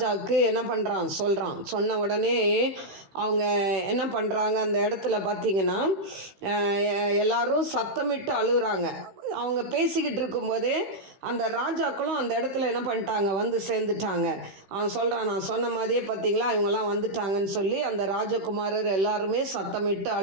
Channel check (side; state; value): left; late; 15 ms